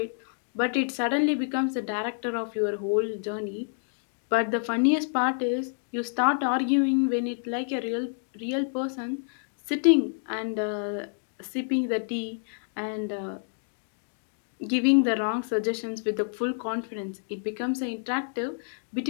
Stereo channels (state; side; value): silent; right; digital silence